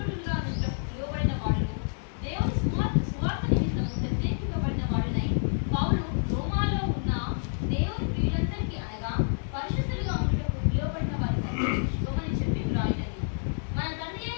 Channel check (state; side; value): silent; right; digital silence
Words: పిలువబడిన వాడును, దేవుని సువార్త నిమిత్తము ప్రత్యేకింపబడిన వాడునై పౌలు రోమాలో ఉన్న దేవుని ప్రియులందరికీ అనగా పరిశుద్ధులుగా ఉండుటకు పిలువబడిన వారికి శుభమని చెప్పి వ్రాయినది. మన తండ్రి